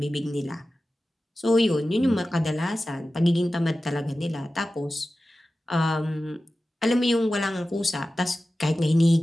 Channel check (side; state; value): both; normal; correlation 0.95